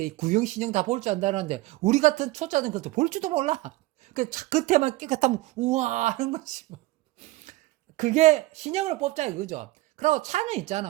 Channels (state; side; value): quieter; left; 19.2 dB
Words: 구형 신형 다 볼 줄 안다는데 우리 같은 초짜는 그것도 볼 줄도 몰라. 그 차 끝에만 깨끗하면 우와 하는 거지 뭐. 그게 신형을 뽑자 이거죠. 그리고 차는